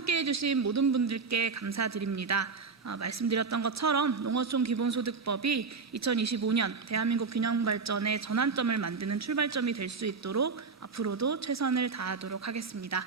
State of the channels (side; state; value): left; quieter; 4.8 dB